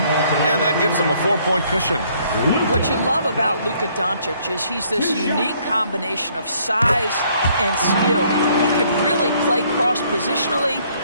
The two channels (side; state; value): both; inverted; correlation -0.65